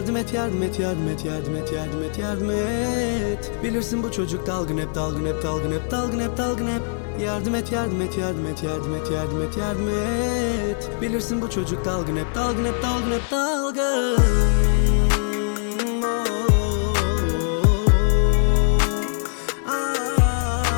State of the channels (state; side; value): silent; right; digital silence